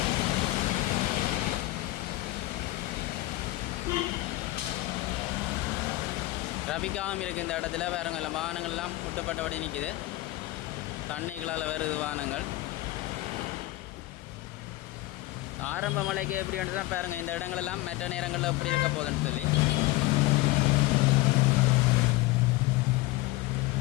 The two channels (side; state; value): right; quieter; 18.6 dB